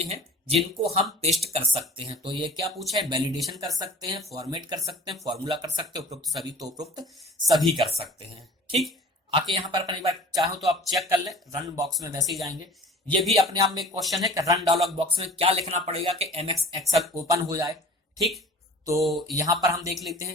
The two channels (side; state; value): both; normal; correlation 0.43